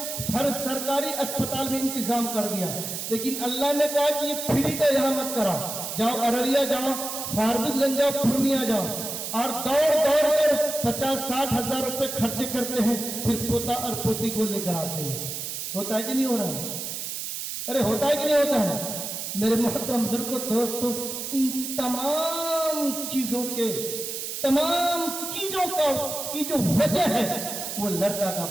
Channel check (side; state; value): right; noise; hiss, 5 dB below the sound